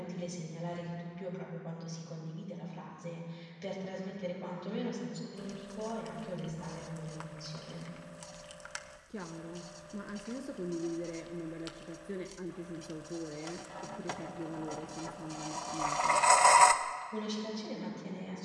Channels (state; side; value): identical; both; correlation 1.00